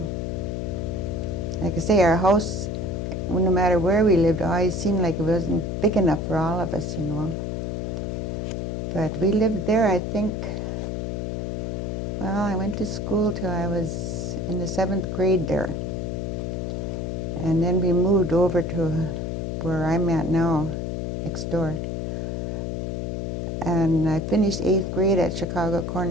like I say, our house, no matter where we lived, always seemed like it wasn't big enough for all of us, But we lived there, I think, well, I went to school till I was in the 7th grade there. And then we moved over to where I'm at now, next door. And I finished 8th grade at Chicago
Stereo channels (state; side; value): noise; left; hum, 3 dB below the sound